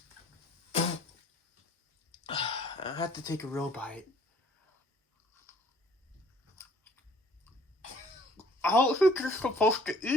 I have to take a real bite. I don't think you're supposed to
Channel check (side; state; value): both; normal; correlation 0.57